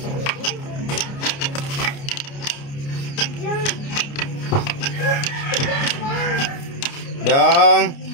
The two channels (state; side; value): late; right; 29 ms